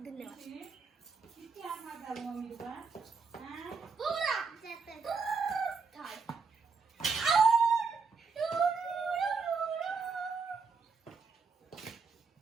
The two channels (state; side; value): quieter; left; 5.1 dB